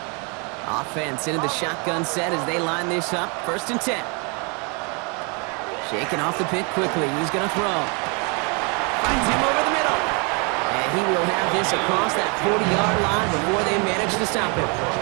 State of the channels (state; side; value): quieter; left; 33.2 dB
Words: Offense into the shotgun set as they line this up. First and 10. Shaking off the pick quickly. He's going to throw. Finds him over the middle. And he will have this across that 40-yard line before they manage to stop him.